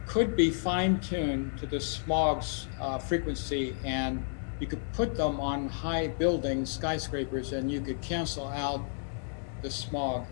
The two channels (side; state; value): right; silent; digital silence